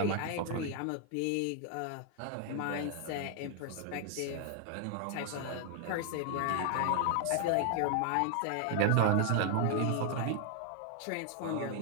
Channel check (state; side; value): different; both; correlation 0.00